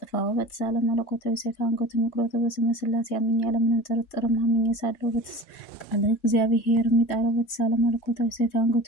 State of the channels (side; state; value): right; late; 3.0 ms